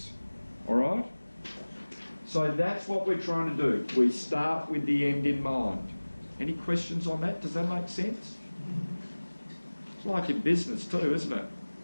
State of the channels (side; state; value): both; inverted; correlation -1.00